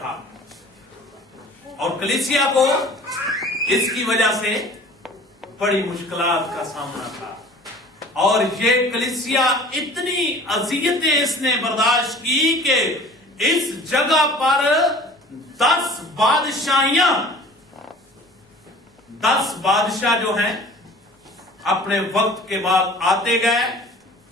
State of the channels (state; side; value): normal; both; correlation 0.46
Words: اور کلیسیا کو اس کی وجہ سے بڑی مشکلات کا سامنا تھا. اور یہ کلیسیا اتنی اذیتیں اس نے برداشت کی کہ اس جگہ پر 10 بادشاہ جو ہیں اپنے وقت کے بعد آتے گئے،